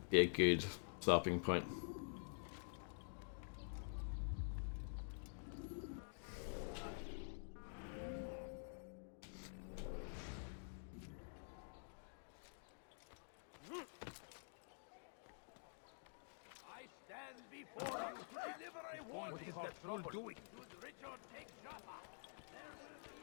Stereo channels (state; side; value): silent; right; digital silence